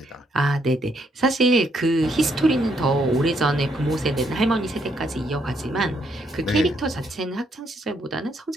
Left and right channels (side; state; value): both; normal; correlation 0.73